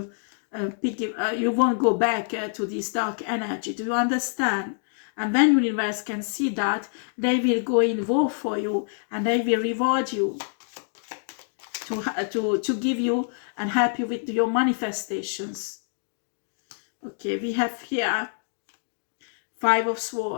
you won't go back to this dark energy. Do you understand? And when universe can see that, they will go in war for you and they will reward you to give you and help you with your manifestations. Okay, we have here 5 of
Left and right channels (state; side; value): silent; right; digital silence